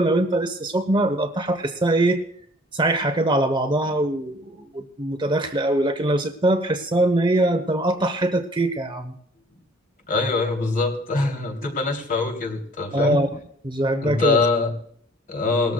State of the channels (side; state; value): both; normal; correlation 0.55